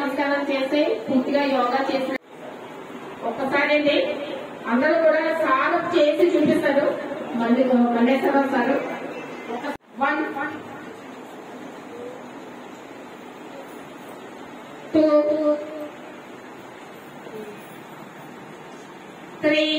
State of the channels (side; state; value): both; identical; correlation 1.00